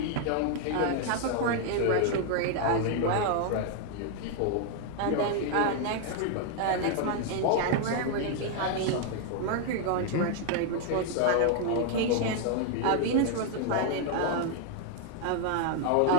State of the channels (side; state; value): both; different; correlation 0.00